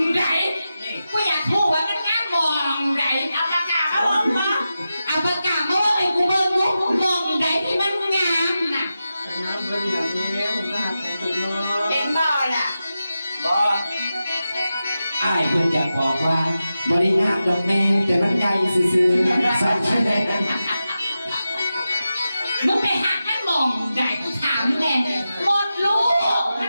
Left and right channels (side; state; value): both; inverted; correlation -0.91